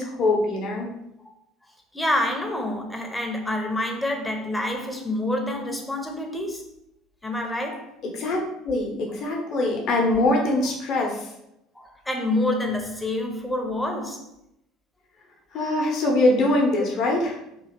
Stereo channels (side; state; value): both; normal; correlation 0.61